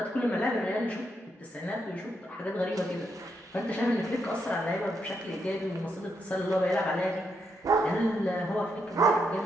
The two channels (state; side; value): normal; both; correlation 0.79